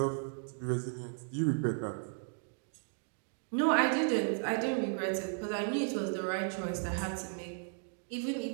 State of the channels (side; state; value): left; silent; 54 dB below the other